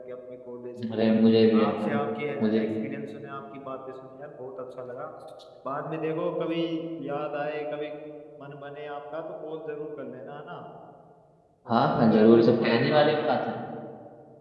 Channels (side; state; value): both; identical; correlation 1.00